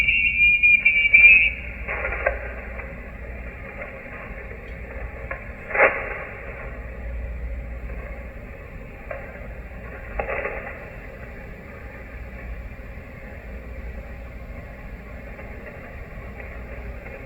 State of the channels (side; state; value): both; identical; correlation 1.00